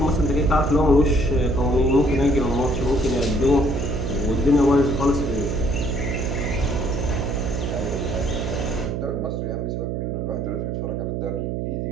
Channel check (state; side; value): noise; right; hum, 2 dB below the sound